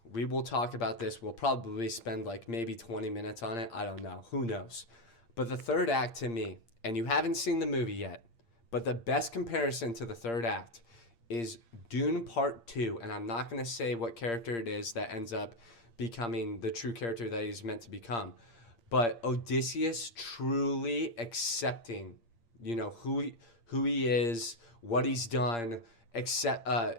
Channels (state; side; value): late; right; 8.6 ms